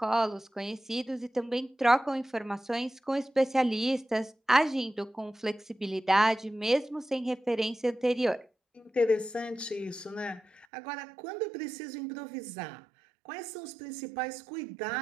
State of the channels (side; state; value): left; drops out; at 10.7 s